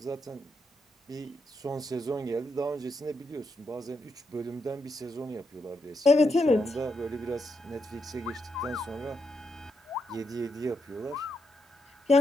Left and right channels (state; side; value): normal; both; correlation 0.82